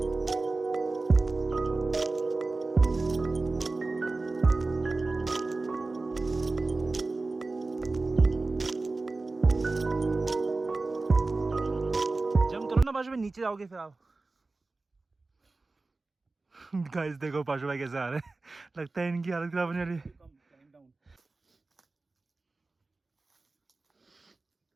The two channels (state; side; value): quieter; left; 3.5 dB